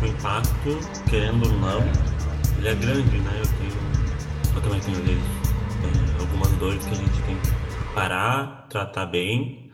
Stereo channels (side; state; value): both; identical; correlation 1.00